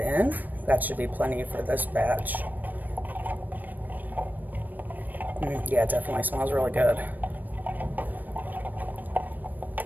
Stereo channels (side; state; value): left; late; 0.087 ms